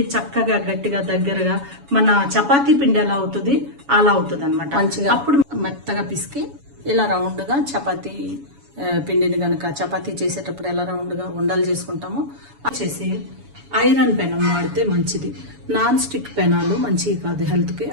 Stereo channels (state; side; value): late; left; 7.1 ms